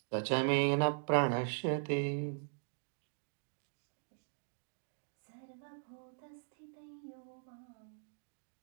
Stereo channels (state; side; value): silent; left; digital silence